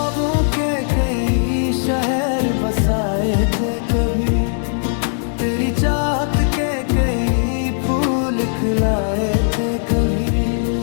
के कई शहर बसाए थे कभी, तेरी चाहत के कई फूल खिलाए थे कभी।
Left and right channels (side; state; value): right; silent; digital silence